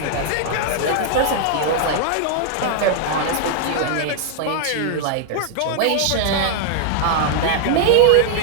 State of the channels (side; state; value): both; different; correlation 0.00